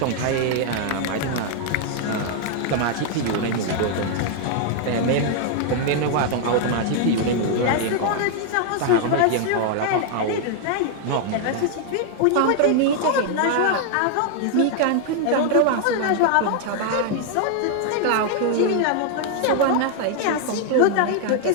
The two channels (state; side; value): different; both; correlation 0.00